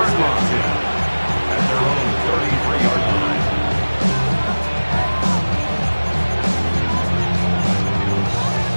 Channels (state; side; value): inverted; both; correlation -1.00